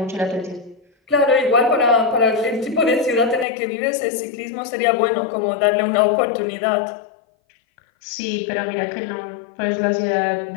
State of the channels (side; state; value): right; drops out; at 3.5 s